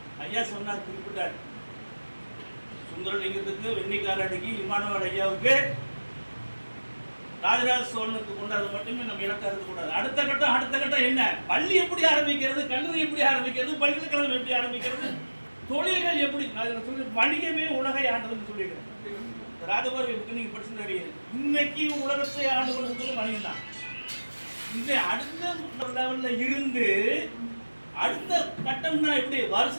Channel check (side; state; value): both; inverted; correlation -1.00